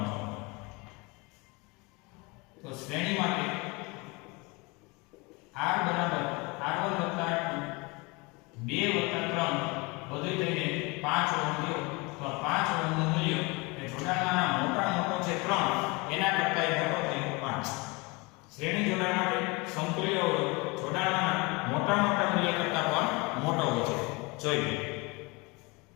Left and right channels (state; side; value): quieter; right; 26.8 dB